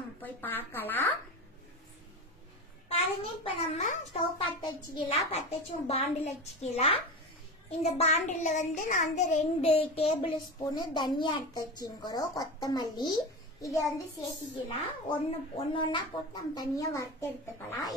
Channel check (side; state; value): both; normal; correlation 0.25